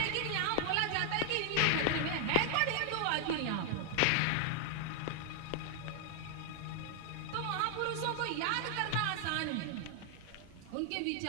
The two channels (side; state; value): both; different; correlation 0.00